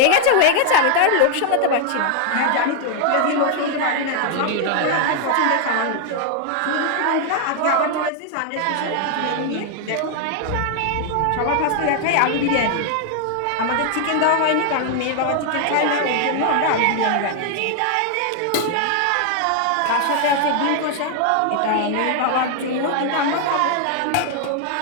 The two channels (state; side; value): different; both; correlation 0.00